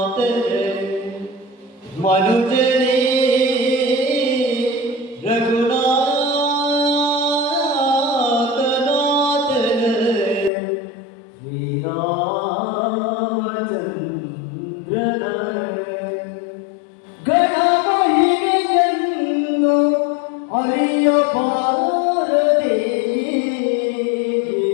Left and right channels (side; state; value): right; drops out; at 10.5 s